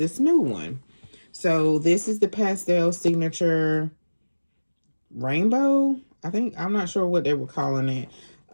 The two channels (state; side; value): inverted; both; correlation -1.00